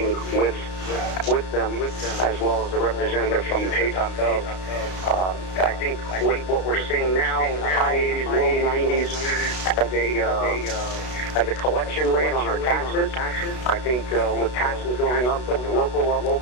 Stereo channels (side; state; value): right; late; 32 ms